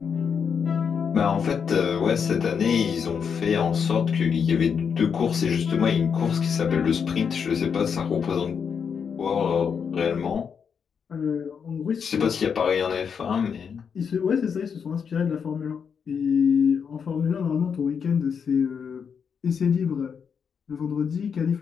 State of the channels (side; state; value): right; quieter; 6.7 dB